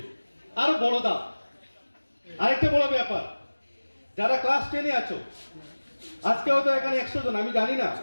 আরো বড় দাও। আরেকটা বড় ব্যাপার, যারা ক্লাস 10-এ আছো, আজকে হয়তো এখানে 100 জন, আমি জানি না,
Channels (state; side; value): inverted; both; correlation -1.00